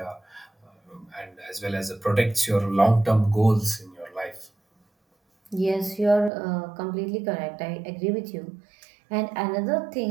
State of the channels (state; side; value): drops out; left; at 6.3 s